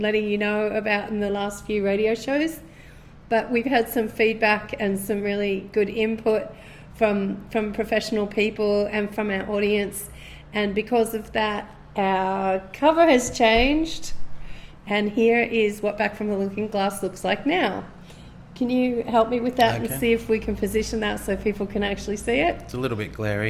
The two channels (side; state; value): both; identical; correlation 1.00